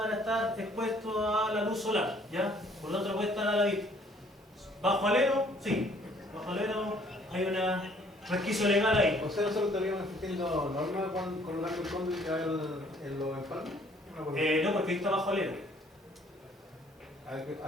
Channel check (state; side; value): normal; both; correlation 0.60